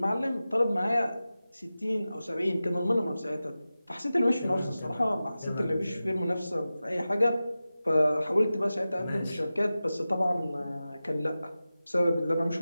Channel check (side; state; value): both; inverted; correlation -0.95